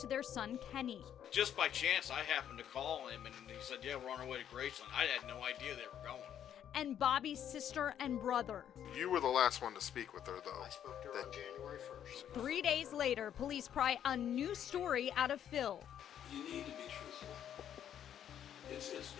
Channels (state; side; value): quieter; right; 9.8 dB